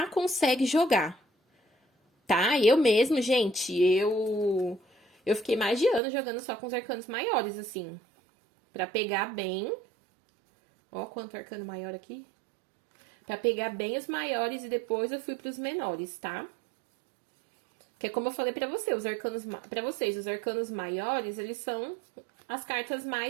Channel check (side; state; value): left; drops out; at 6.0 s